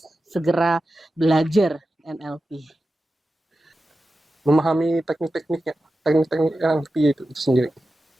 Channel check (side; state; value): both; normal; correlation 0.93